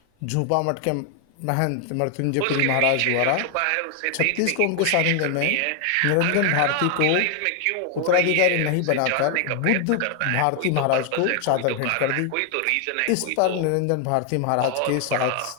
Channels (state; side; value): different; both; correlation 0.00